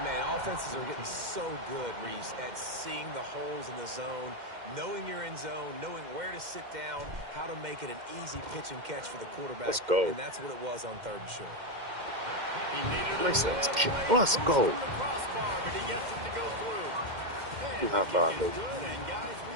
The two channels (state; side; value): late; left; 2.1 ms